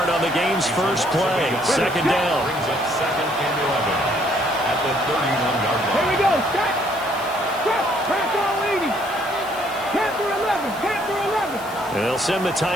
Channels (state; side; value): noise; left; hiss, 18 dB below the sound